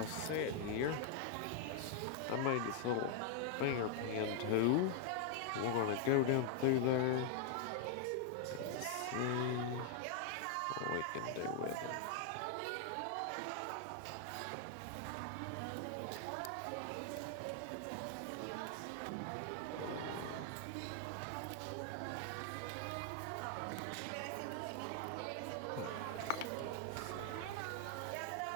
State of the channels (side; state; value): both; different; correlation 0.00